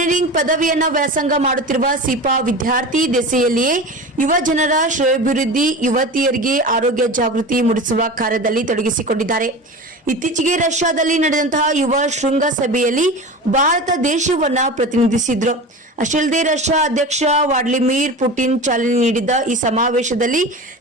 ಪದವಿಯನ್ನ ವ್ಯಾಸಂಗ ಮಾಡುತ್ತಿರುವ ಸೀಪಾ ವಿದ್ಯಾರ್ಥಿ ದೆಸೆಯಲ್ಲಿಯೇ ಯುವ ಜನರ ಶ್ರೇಯೋಭಿವೃದ್ಧಿ, ಯುವತಿಯರಿಗೆ ಆರೋಗ್ಯ ಜಾಗೃತಿ ಮೂಡಿಸುವ ಕಾರ್ಯದಲ್ಲಿ ತೊಡಗಿಸಿಕೊಂಡಿದ್ದಾರೆ. ಇತ್ತೀಚೆಗೆ ರಷ್ಯಾದಲ್ಲಿ ನಡೆದಂತಹ ಯುವ ಶೃಂಗಸಭೆಯಲ್ಲಿ ಭಾರತ ದೇಶವನ್ನ ಪ್ರತಿನಿಧಿಸಿದ್ರು. ಅಷ್ಟೇ ಅಲ್ಲದೆ ರಷ್ಯಾ ಅಧ್ಯಕ್ಷ ವ್ಲಾಡಿಮಿರ್ ಪುಟಿನ್ ಚಾಲನೆ ನೀಡಿದ್ದ ಈ ಸಮಾವೇಶದಲ್ಲಿ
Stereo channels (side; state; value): both; normal; correlation 0.31